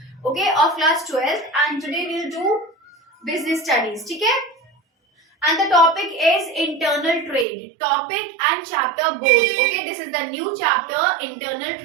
okay, of class 12 and today we'll do business studies, okay? And the topic is internal trade, topic and chapter both. Okay, this is the new chapter, internal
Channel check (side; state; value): left; drops out; at 7.5 s